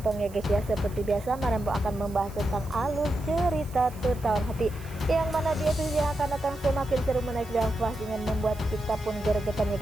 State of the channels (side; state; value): right; noise; hiss, 21 dB below the sound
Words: ya guys ya. Seperti biasa Mak Rempong akan membahas tentang alur cerita tertawan hati, yang mana di episode yang akan datang semakin seru, menarik dan puas dengan membuat kita pun gregetan ya